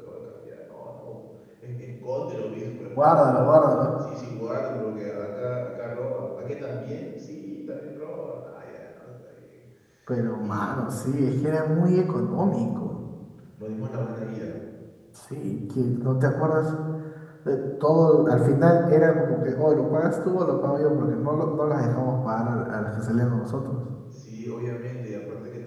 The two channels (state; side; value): identical; both; correlation 1.00